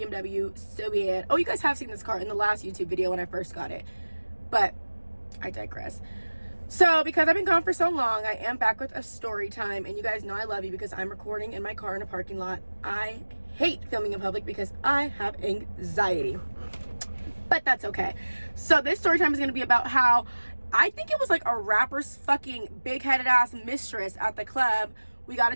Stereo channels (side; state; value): both; inverted; correlation -1.00